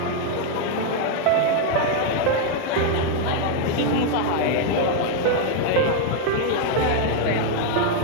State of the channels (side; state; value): both; different; correlation 0.00